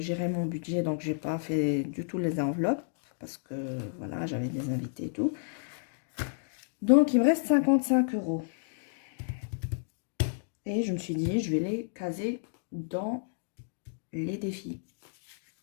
mon budget, donc j'ai pas fait du tout les enveloppes. Parce que, voilà, j'avais des invités et tout. Donc, il me reste 55 €. Et je me suis dit, je vais les caser dans les défis.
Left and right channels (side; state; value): right; silent; digital silence